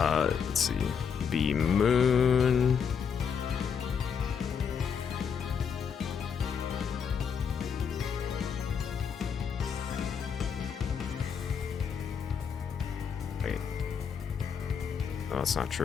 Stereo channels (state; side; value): quieter; right; 6.9 dB